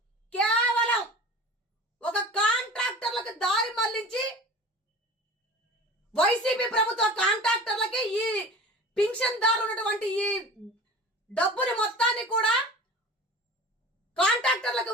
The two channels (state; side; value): normal; both; correlation 0.38